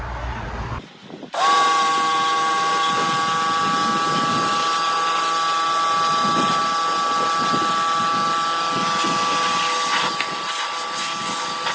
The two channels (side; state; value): both; identical; correlation 1.00